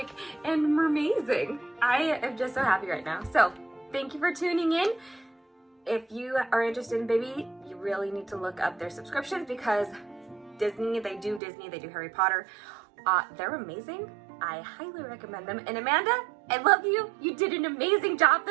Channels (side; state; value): left; drops out; at 11.4 s